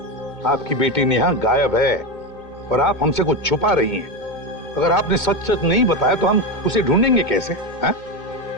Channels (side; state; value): right; late; 2.2 ms